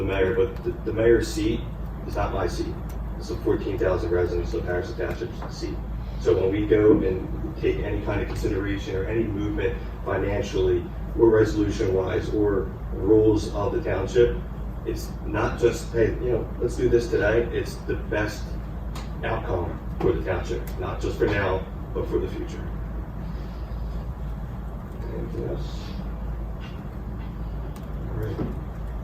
mayor, but the mayor's seat is not my seat. It's the 14,000 residents of Harrison Township's seat. So when we go and take any kind of consideration or any movement financially or resolution-wise or rules of the township, it's not just, hey, let's do this today. It's the best outcome for the township, not just for now, but for the future. Anything else?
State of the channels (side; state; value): both; identical; correlation 1.00